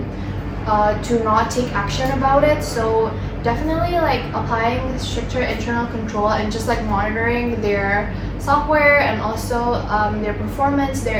to not take action about it. So definitely like applying stricter internal control and just like monitoring their software and also their performance,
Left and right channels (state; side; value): identical; both; correlation 1.00